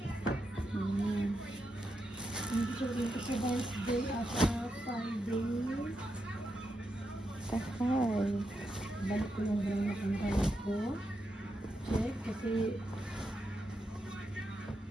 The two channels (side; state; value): both; normal; correlation 0.85